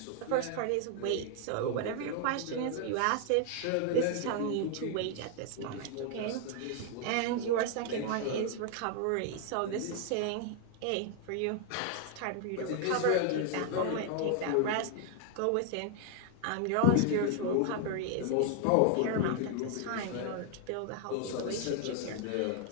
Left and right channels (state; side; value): different; both; correlation 0.00